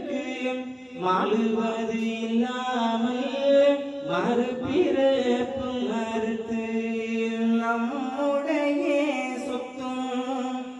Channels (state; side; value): identical; both; correlation 1.00